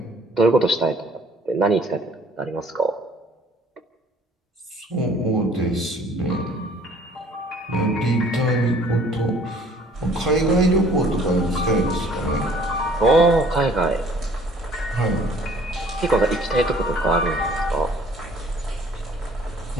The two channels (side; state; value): both; normal; correlation 0.55